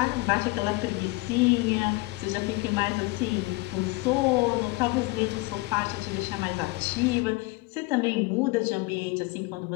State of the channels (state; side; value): quieter; right; 22.6 dB